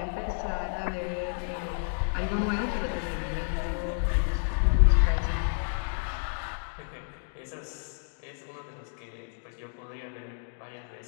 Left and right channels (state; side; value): silent; right; 58 dB below the other